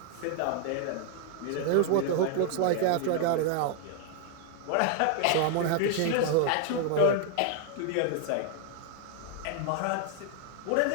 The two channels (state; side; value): different; both; correlation 0.00